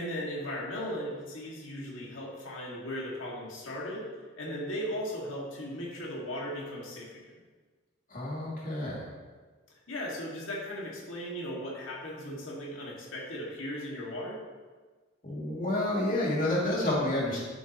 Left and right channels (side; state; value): both; normal; correlation 0.34